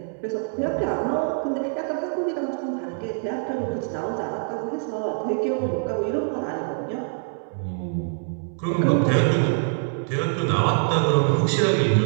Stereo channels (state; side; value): silent; left; 62 dB below the other